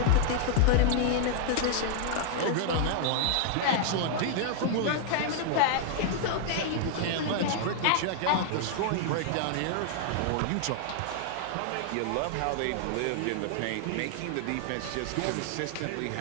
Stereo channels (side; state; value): both; different; correlation 0.00